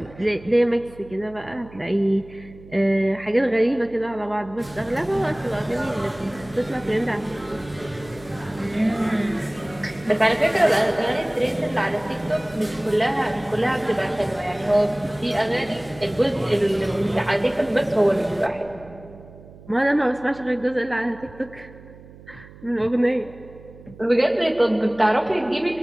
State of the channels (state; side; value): noise; right; hum, 20 dB below the sound